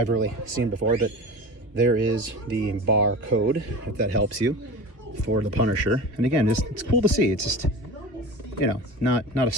really seen before, but there is the barcode, if that helps you, for the Punisher. And again, it's cool to see. It's just, you know, not a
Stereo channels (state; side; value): late; left; 3.2 ms